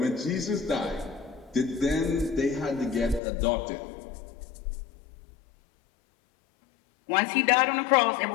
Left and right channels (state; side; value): drops out; right; at 3.2 s